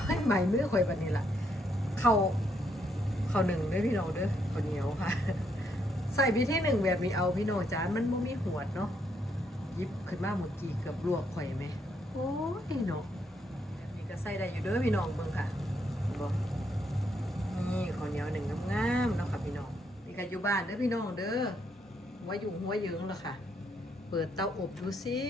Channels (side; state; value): both; normal; correlation 0.75